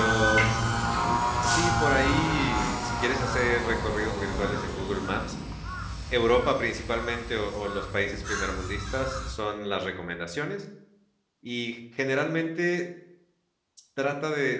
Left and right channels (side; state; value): both; identical; correlation 1.00